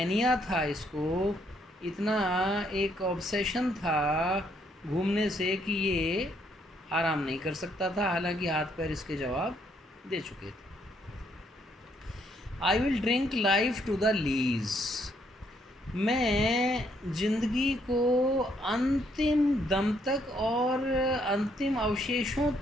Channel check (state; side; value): normal; both; correlation 0.71